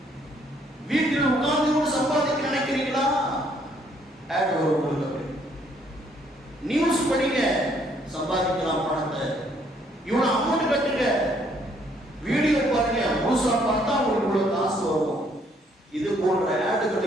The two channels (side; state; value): both; normal; correlation 0.67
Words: வீட்டில் உட்கார்ந்து சம்பாதிக்க நினைக்கிறீங்களா? நியூஸ் படிங்க, சம்பாதிக்கலாம் பணத்தை, இவ்வளவு அமௌண்ட் கட்டுங்க, வீடியோ பாருங்க, முழுசா பார்த்தா உங்களுக்கு காசு வரும். இது போன்ற